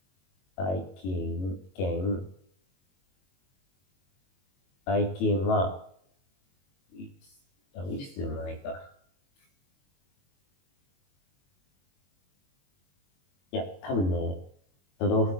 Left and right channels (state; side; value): late; right; 22 ms